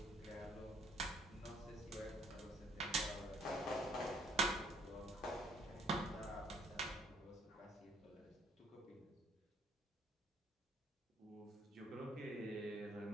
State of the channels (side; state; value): both; normal; correlation 0.62